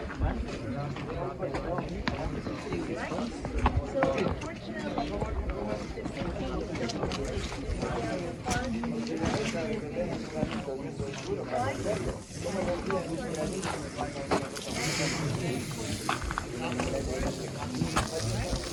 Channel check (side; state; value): both; identical; correlation 1.00